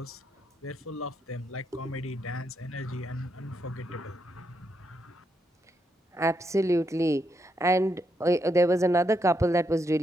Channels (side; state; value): both; normal; correlation 0.80